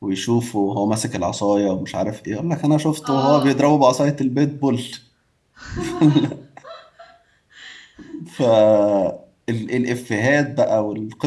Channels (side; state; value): both; identical; correlation 1.00